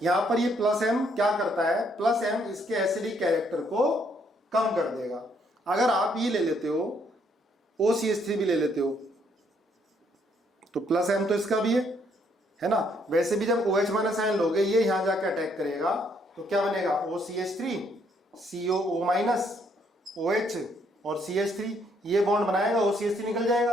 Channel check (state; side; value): normal; both; correlation 0.70